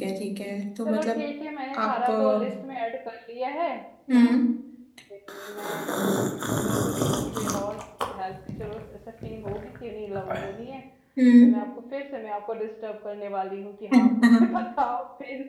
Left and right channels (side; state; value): both; identical; correlation 1.00